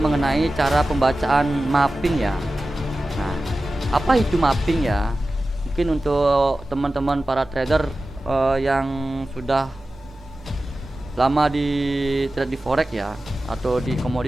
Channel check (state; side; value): normal; both; correlation 0.95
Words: cara pembacaan mapping ya. Nah, apa itu mapping ya? Mungkin untuk teman-teman para trader yang sudah lama di trade di forex ya, atau di